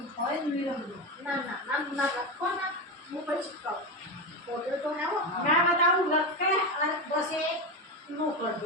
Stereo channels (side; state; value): both; normal; correlation 0.16